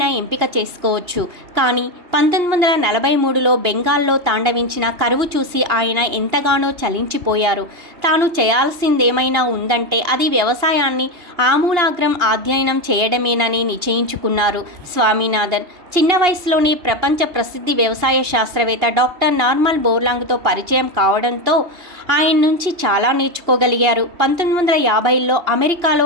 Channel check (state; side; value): late; left; 2.8 ms